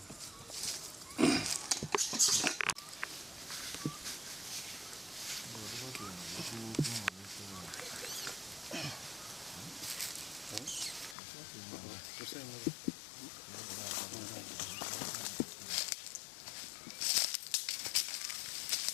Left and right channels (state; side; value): drops out; right; at 11.2 s